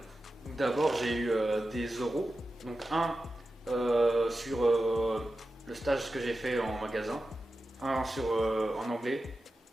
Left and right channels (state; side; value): normal; both; correlation 0.92